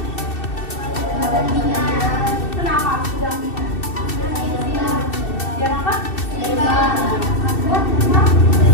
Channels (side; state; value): right; late; 2.7 ms